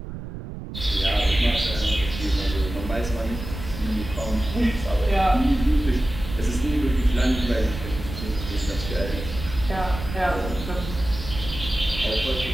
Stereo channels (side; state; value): right; noise; rumble, 9 dB below the sound